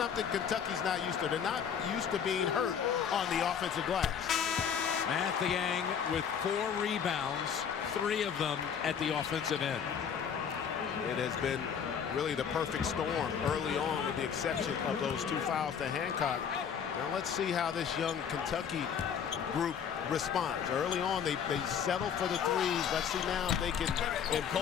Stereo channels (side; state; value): right; quieter; 7.6 dB